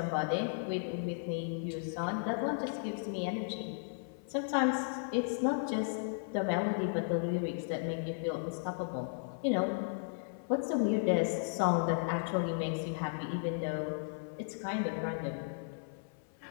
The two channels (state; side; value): silent; right; 54 dB below the other